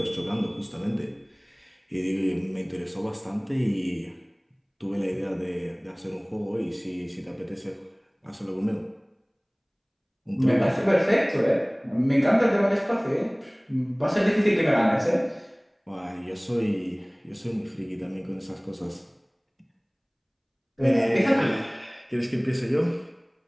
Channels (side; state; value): both; identical; correlation 1.00